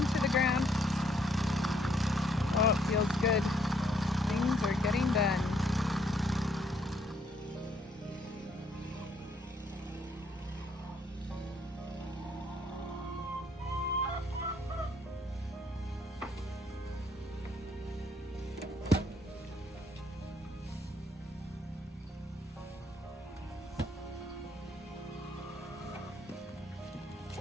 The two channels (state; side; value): normal; both; correlation 0.68